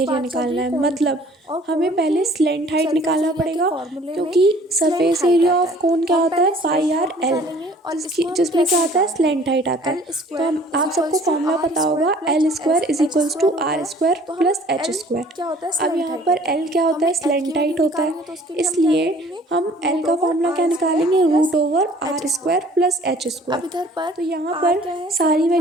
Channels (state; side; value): normal; both; correlation 0.53